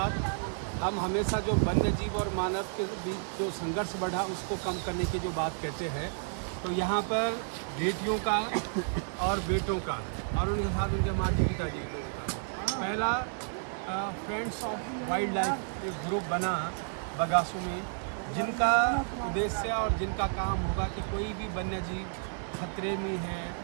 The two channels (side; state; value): left; silent; 57 dB below the other